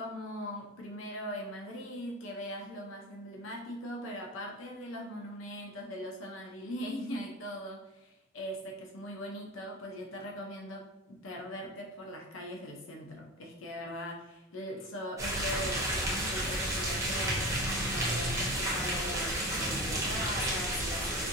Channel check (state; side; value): normal; both; correlation 0.28